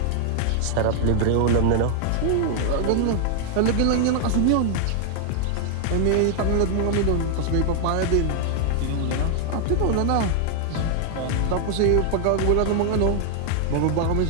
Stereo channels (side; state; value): both; different; correlation 0.00